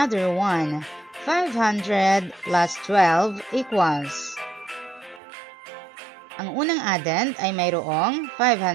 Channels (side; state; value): left; drops out; at 5.2 s